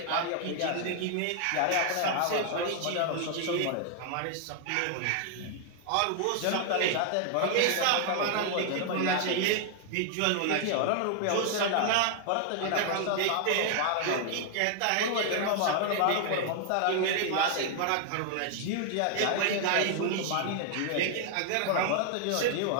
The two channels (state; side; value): different; both; correlation 0.00